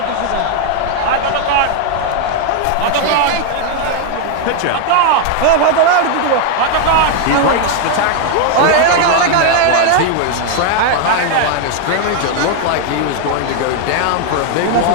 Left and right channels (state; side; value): different; both; correlation 0.00